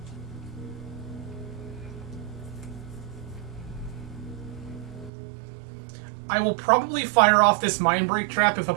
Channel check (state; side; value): drops out; left; at 5.1 s